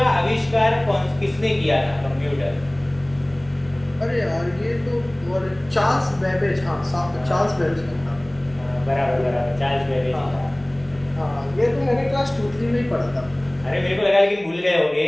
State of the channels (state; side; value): noise; left; hum, 26 dB below the sound